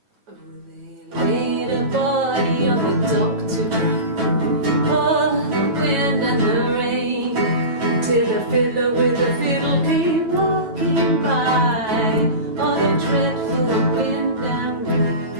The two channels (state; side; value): late; left; 9.2 ms